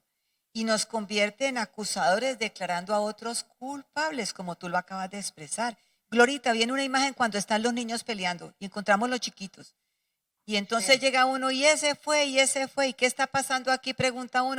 Y nos convierte en acusadores declarando a otros culpables, como tú lo acabas de expresar. Glorita, viene una imagen cuando están los niños peleando y encontramos los chiquitos. Y entonces Sí. llega uno y ese fue, ¿y qué está pasando aquí? Pregunta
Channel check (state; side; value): identical; both; correlation 1.00